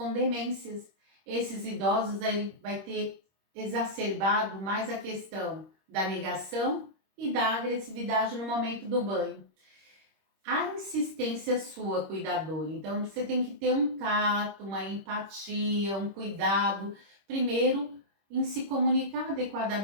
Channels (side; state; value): left; late; 25 ms